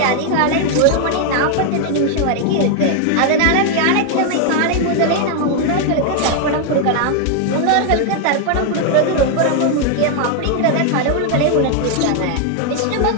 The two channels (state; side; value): different; both; correlation 0.00